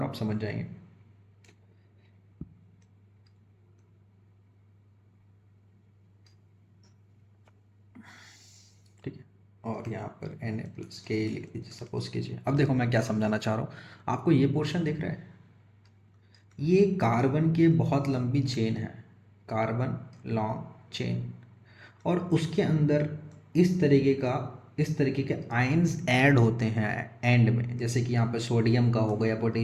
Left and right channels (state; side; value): identical; both; correlation 1.00